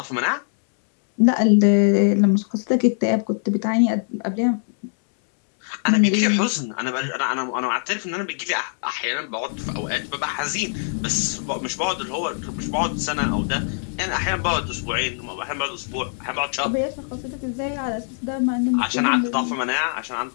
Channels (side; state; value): right; silent; digital silence